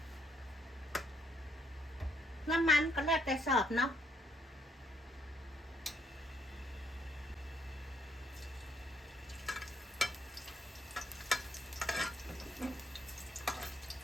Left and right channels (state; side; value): normal; both; correlation 0.71